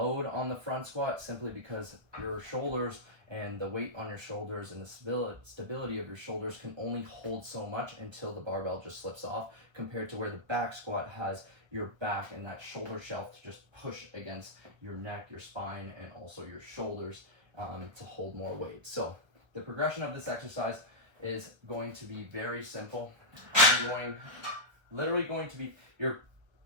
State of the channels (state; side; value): late; left; 1.3 ms